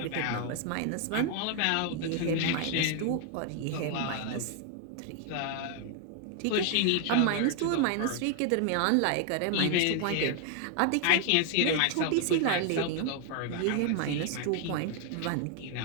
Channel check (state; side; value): different; both; correlation 0.00